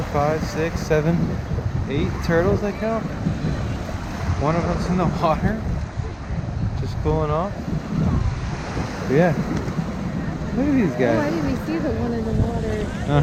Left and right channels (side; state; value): both; identical; correlation 1.00